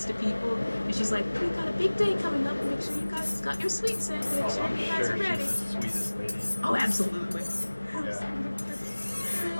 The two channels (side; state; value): both; inverted; correlation -1.00